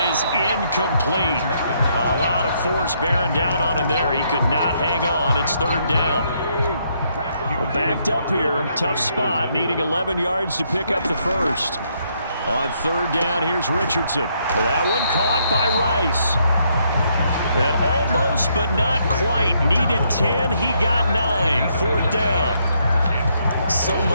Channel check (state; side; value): inverted; both; correlation -0.73